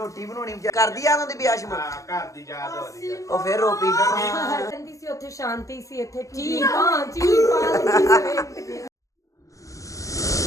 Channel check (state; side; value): late; right; 0.16 ms